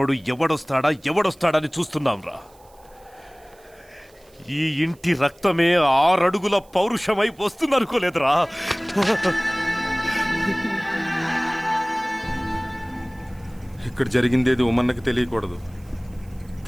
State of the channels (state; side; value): noise; right; hiss, 30 dB below the sound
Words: ఎవడొస్తాడని చూస్తున్నాంరా. ఈ ఇంటి రక్తమే 6 అడుగుల పౌరుషమై వస్తుందనుకోలేదురా. ఇక్కడ జరిగిందేది ఉమన్నకి తెలియకూడదు.